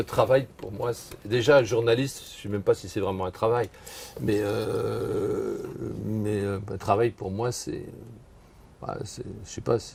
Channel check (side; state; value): both; identical; correlation 1.00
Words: travail, pour moi, déjà, journaliste, je ne sais même pas si c'est vraiment un travail, mais un travail, pour moi, c'est je sais pas,